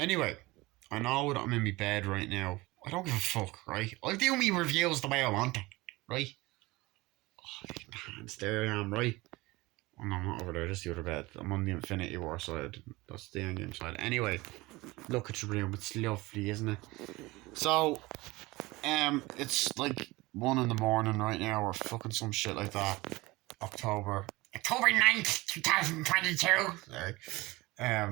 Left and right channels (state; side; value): quieter; left; 21.4 dB